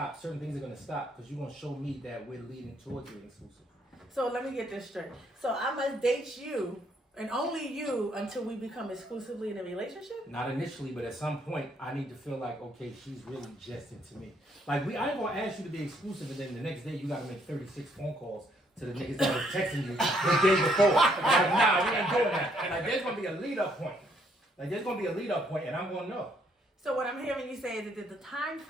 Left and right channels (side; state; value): both; normal; correlation 0.69